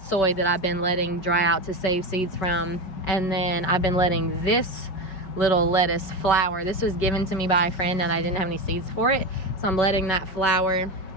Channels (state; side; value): late; right; 5.2 ms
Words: that I've been letting dry out to save seeds from. And then I've been letting this little lettuce flower. This was given to me by a friend and I didn't have any seeds for it, so I'm letting that flower.